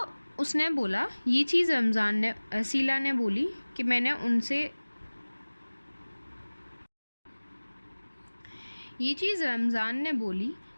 उसने बोला, ये चीज़ रसीला ने बोली कि मैंने उनसे ये चीज़ रमज़ान ने बोली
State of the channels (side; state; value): both; inverted; correlation -1.00